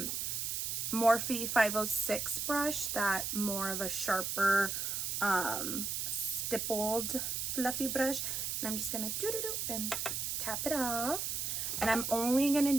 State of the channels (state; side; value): noise; right; hiss, 1 dB below the sound